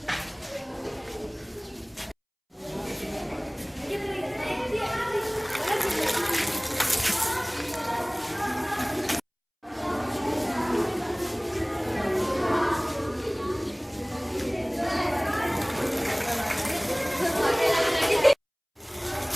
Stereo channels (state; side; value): identical; both; correlation 1.00